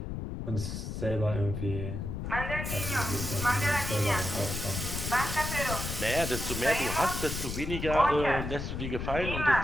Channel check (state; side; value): noise; left; rumble, 5 dB below the sound